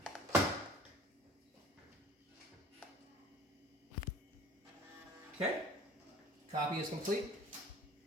Okay, copy is complete.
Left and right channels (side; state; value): both; normal; correlation 0.46